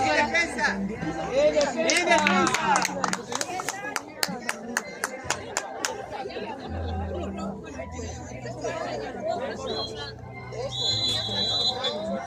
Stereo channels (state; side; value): identical; both; correlation 1.00